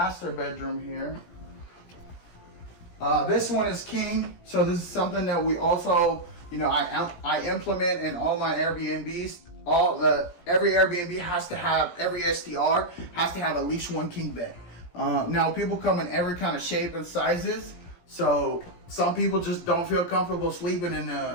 bedroom here. This one is king, so this is something that we also, you know, I implement in all my Airbnbs. Every Airbnb has to have, every STR has to have at least one king bed. Now people come in every kind of shape and sizes, so some people just don't feel comfortable sleeping in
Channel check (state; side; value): late; right; 17 ms